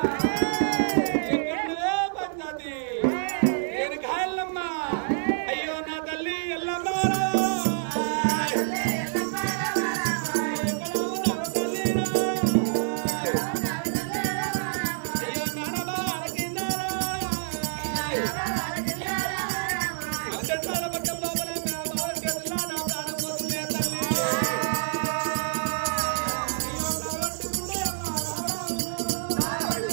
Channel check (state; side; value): silent; left; 57 dB below the other